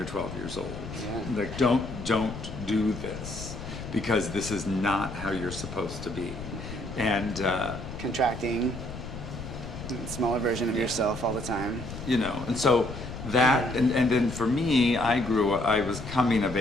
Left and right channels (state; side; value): noise; left; rumble, 10 dB below the sound